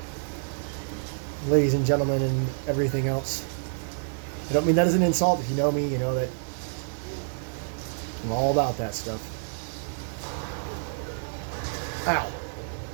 Ladies and gentlemen and everything else. I don't mean that as an insult. If you know me, you know that I'm all about that stuff. Ow.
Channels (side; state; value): left; silent; 59 dB below the other